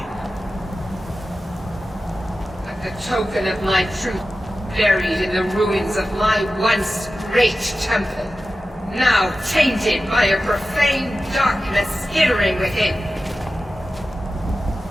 Like a token of my truth, buried in the ruins of my once great temple, now tainted by a profane darkness skittering within.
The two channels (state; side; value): normal; both; correlation 0.94